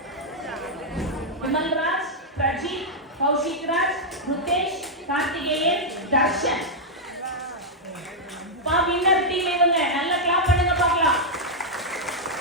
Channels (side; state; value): both; normal; correlation -0.04